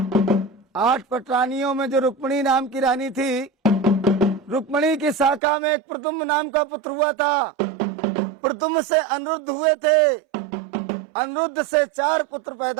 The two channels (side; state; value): left; drops out; at 5.4 s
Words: 8 पटरानियों में जो रुक्मिणी नाम की रानी थी, रुक्मिणी की शाखा में एक प्रद्युम्न नाम का पुत्र हुआ था। प्रद्युम्न से अनिरुद्ध हुए थे, अनिरुद्ध से 4 पुत्र